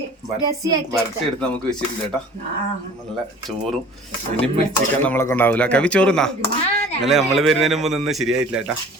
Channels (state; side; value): normal; both; correlation 0.46